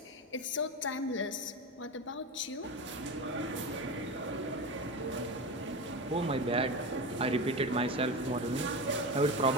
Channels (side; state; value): both; normal; correlation 0.23